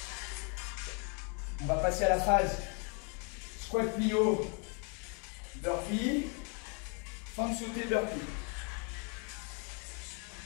On va passer à la phase squat plio, burpee, fente sautée, burpee.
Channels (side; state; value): right; quieter; 36.6 dB